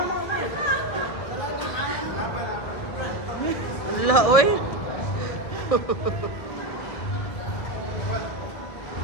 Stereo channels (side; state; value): right; late; 1.7 ms